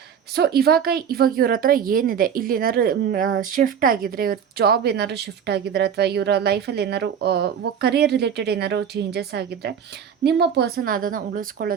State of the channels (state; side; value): quieter; left; 8.0 dB